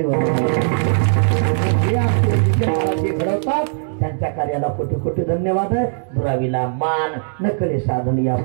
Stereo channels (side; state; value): left; silent; digital silence